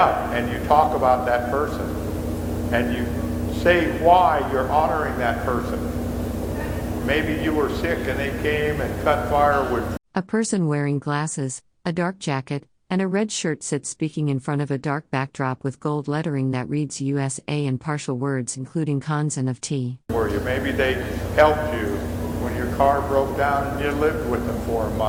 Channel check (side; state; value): both; identical; correlation 1.00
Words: and you talk about that person and you say why you're honoring that person. Maybe you were sick and they came and cut firewood. A person wearing glasses, a dark jacket, and a red shirt sits speaking in front of a dark backdrop with gold lettering that reads USA and partial words including cons and of tea. Maybe they helped you when your car broke down and you lived with them for a